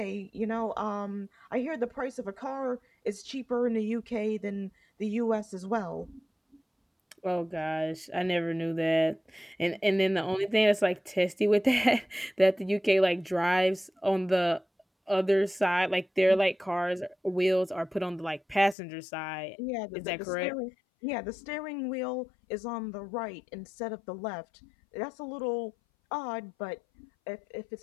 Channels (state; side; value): drops out; right; at 18.8 s